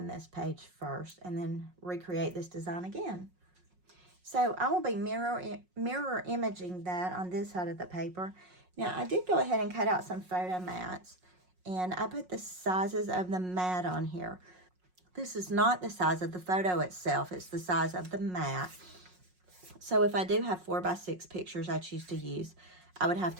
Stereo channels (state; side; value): late; left; 5.5 ms